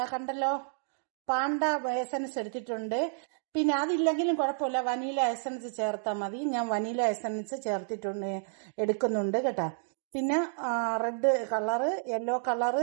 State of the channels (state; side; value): silent; left; digital silence